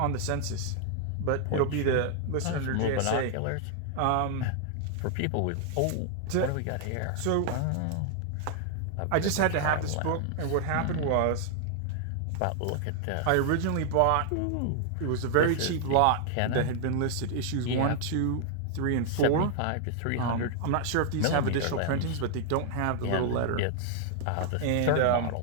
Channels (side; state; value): both; different; correlation 0.00